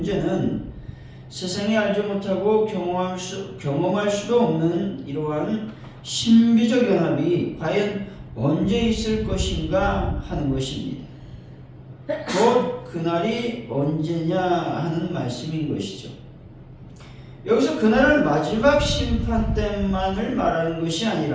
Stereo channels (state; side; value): identical; both; correlation 1.00